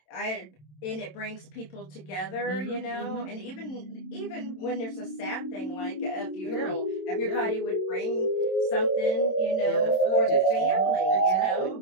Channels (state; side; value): late; right; 27 ms